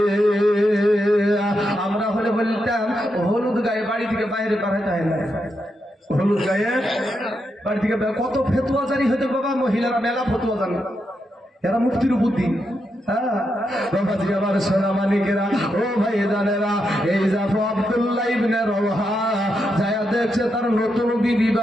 আমরা হলে বলতাম হলুদ গায়ে বাড়ি থেকে বাইরে পাঠাতে হয় না, হলুদ গায়ে বাড়ি থেকে কত ফেতুয়া জারি হইতে বাবা, মহিলারা মেলা ফতুয়া জানে, এরা মুক্তির বুদ্ধি। হ্যাঁ বাবাজি, আমার সোনা মানিকেরা, ও ভাই জানেরা, এই জাফর আব্দুল্লাহ ইবনে রাওহা যায়া দেখছে তার নতুন বিবি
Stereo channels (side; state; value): both; normal; correlation 0.84